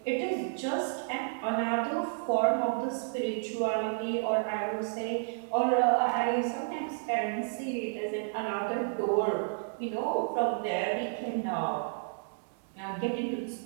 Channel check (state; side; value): silent; left; digital silence